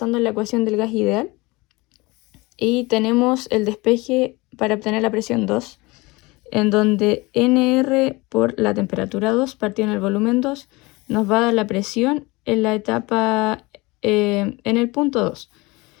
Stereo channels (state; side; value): quieter; right; 23.5 dB